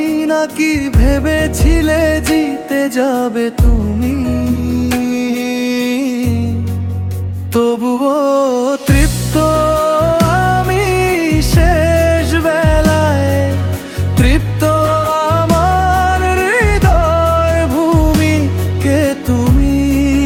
নাকি ভেবেছিলে জিতে যাবে তুমি? তবুও তৃপ্ত আমি শেষ বেলায়, তৃপ্ত আমার হৃদয় ভূমি কে তুমি।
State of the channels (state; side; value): identical; both; correlation 1.00